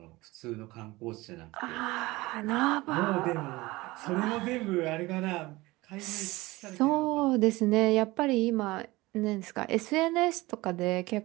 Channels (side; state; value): left; quieter; 20.6 dB